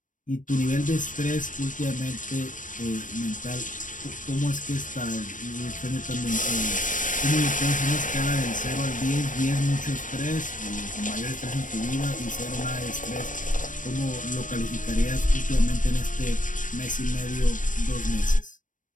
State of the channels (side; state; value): right; late; 0.38 ms